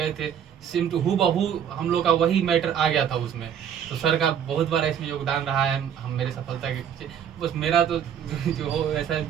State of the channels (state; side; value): quieter; left; 8.7 dB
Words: थे सेम टू हूबहू हम लोग का वही मैटर आ गया था उसमें। तो सर का बहुत बड़ा इसमें योगदान रहा है हम मेरे सफलता के पीछे। बस मेरा तो जो हो ऐसा